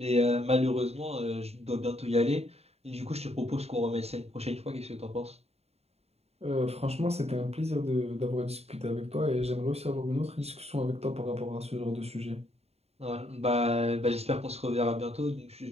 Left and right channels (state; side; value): late; left; 0.30 ms